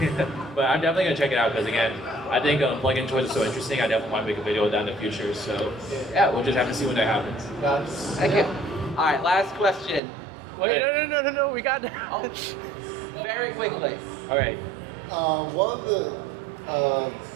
But I'm definitely gonna check it out because again, I think plug-in toys are so interesting. I definitely want to make a video of that in the future. So yeah, we'll just have to see when that happens. Thank you. All right, last question. Wait, no. We got. Oh, very quickly. All right. One of the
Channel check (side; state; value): left; drops out; at 10.0 s